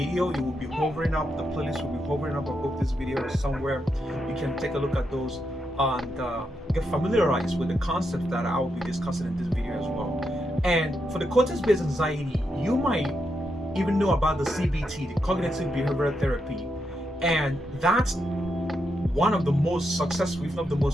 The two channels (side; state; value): both; normal; correlation 0.83